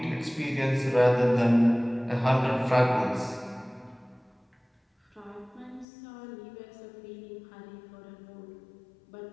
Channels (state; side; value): drops out; right; at 5.9 s